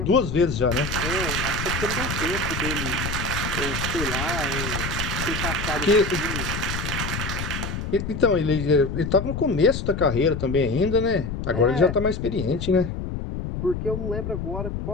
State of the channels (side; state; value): left; noise; rumble, 4 dB below the sound